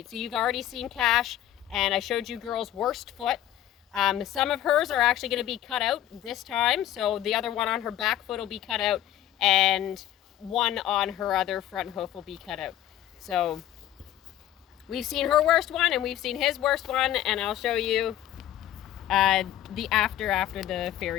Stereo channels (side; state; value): right; quieter; 12.4 dB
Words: So you've already seen Cash, and I showed you Gurl's worst foot. Some of hers are actually going to be cut out this time, so the other one on her back foot will be cut out, and one on her other front hoof will be cut out. So we've seen her worst one, and we've seen his worst one, and I'll show you the after the